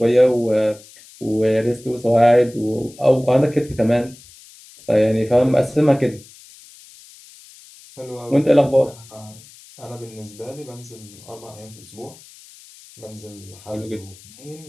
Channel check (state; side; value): noise; left; hiss, 22 dB below the sound